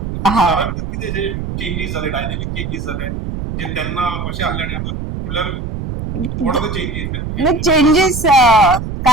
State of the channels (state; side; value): noise; right; rumble, 5 dB below the sound